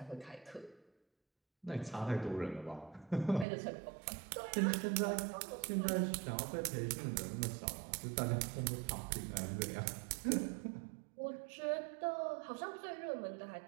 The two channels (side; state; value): left; drops out; at 3.5 s